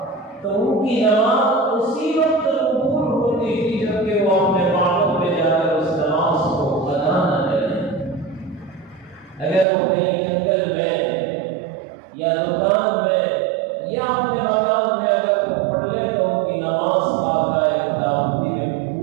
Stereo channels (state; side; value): drops out; left; at 9.7 s